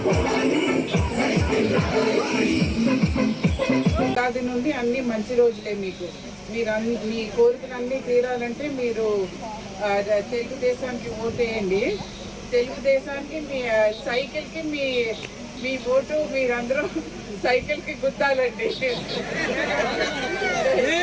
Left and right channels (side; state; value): both; identical; correlation 1.00